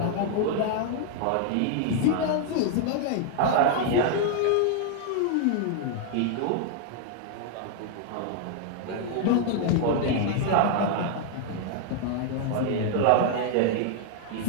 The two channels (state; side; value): different; both; correlation 0.00